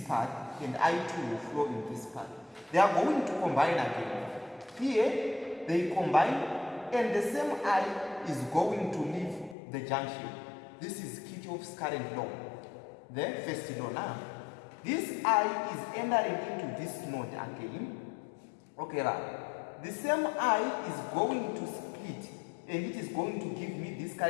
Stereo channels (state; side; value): drops out; right; at 9.6 s